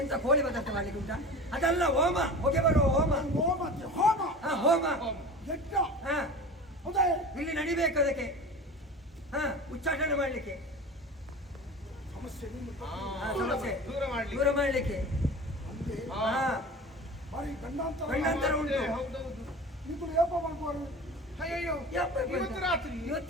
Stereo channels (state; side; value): normal; both; correlation 0.35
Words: ಎಂತ ಕೋಳಿ ಪದಾರ್ಥ ಮಾಡ್ಲಿಕ್ಕೆ ಉಂಟಾ? ಅದಲ್ಲ ಹೋಮ, ಹೊಗೆ ಬರುವ ಹೋಮ. ಹೋಮ ಹೋಮ ಹಾ, ಹೋಮ. ಯಜ್ಞ. ಹಾ, ಹೌದಾ? ಇಲ್ಲಿ ನಡಿಬೇಕು ಅದಕ್ಕೆ. ಹಾ, ಉಚ್ಚಾಟನೆ ಮಾಡ್ಲಿಕ್ಕೆ. ಸಮಸ್ಯೆ ಹಾ, ಸಮಸ್ಯೆ ದೂರ ಮಾಡ್ಲಿಕ್ಕೆ. ದೂರ ಮಾಡ್ಲಿಕ್ಕೆ. ಅಂದ್ರೆ ಹಾ. ಹಾ, ಬಾರಿ ಗಂಡಾಂತರ ಗಂಡಾಂತರ ಉಂಟು. ಹೌದೌದು. ಇದು ಏಪ ಮಾಡ್ಕೋರು ಅಯ್ಯಯ್ಯೋ, ಯಪ್ಪ, ಇವತ್ತು ರಾತ್ರಿ